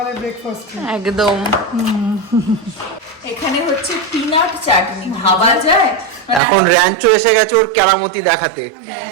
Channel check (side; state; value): left; drops out; at 6.4 s